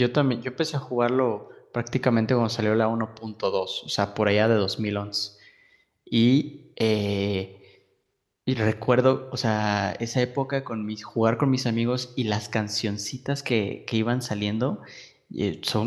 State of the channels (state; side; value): identical; both; correlation 1.00